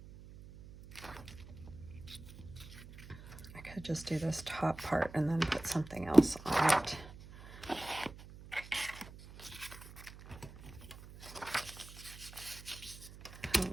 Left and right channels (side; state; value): right; noise; hum, 16 dB below the sound